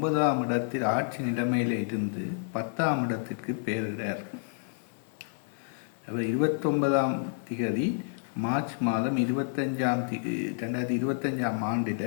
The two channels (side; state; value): right; silent; digital silence